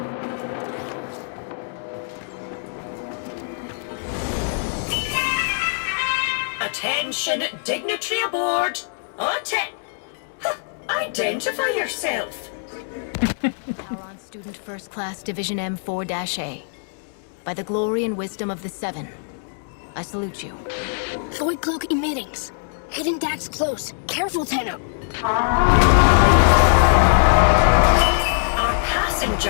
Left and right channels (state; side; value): silent; right; digital silence